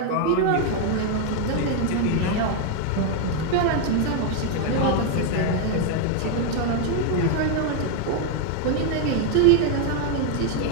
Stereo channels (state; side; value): different; both; correlation 0.01